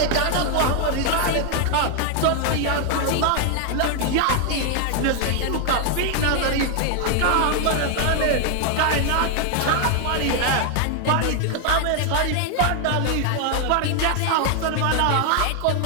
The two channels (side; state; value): both; different; correlation 0.00